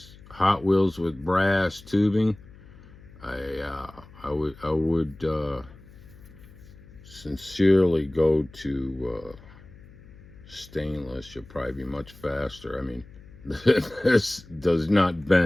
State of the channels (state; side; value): noise; left; hum, 21 dB below the sound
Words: Hot Wheels with brass tubing. I would sincerely go to stainless. You'll probably be much faster. I mean, this does not